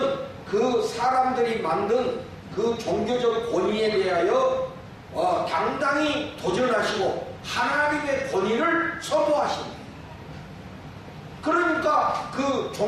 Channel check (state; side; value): identical; both; correlation 1.00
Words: 그 사람들이 만든 그 종교적 권위에 대하여 당당히 도전하시고 하나님의 권위를 선포하십니다. 그러니까 그